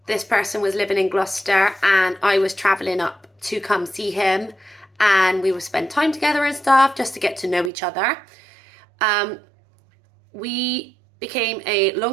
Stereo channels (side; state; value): left; drops out; at 7.7 s